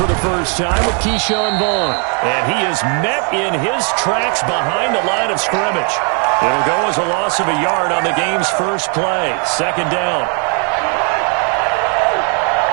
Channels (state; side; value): quieter; left; 39.0 dB